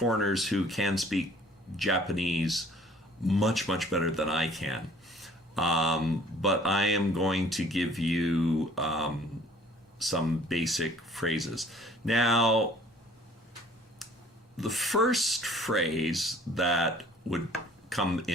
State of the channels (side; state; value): both; normal; correlation 0.55